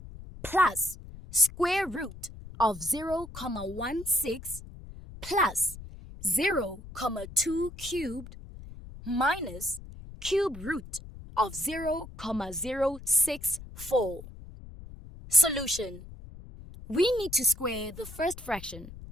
plus square root of 0,16 plus 0,2 cubed minus cube root of 0,064. Solution. We need to square the first fraction,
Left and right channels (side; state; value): left; noise; rumble, 15 dB below the sound